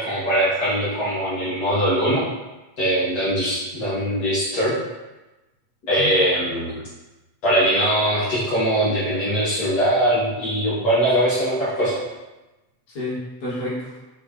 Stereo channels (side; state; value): right; late; 8.3 ms